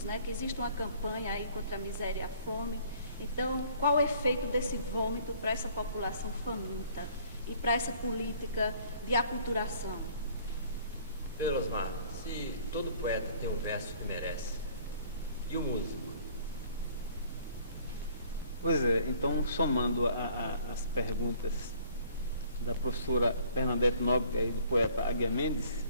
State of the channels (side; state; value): both; inverted; correlation -0.56